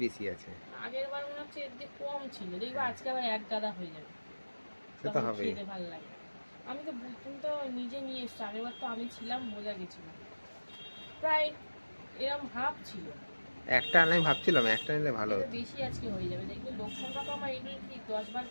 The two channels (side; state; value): both; inverted; correlation -1.00